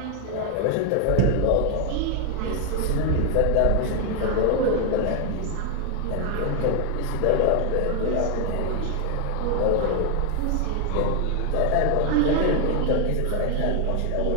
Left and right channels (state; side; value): different; both; correlation 0.00